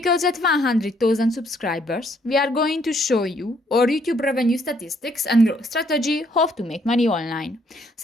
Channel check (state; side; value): normal; both; correlation 0.68